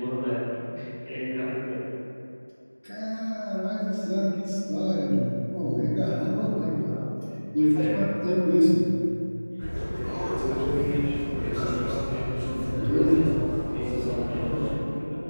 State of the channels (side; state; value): both; inverted; correlation -1.00